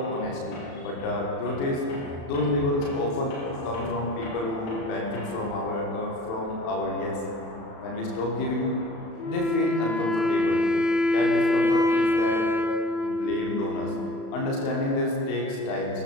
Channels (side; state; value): right; late; 36 ms